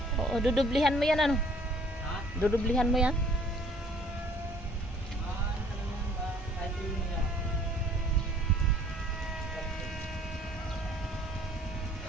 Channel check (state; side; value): normal; both; correlation 0.58